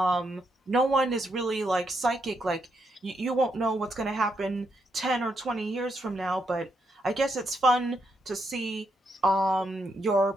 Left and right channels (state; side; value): normal; both; correlation 0.79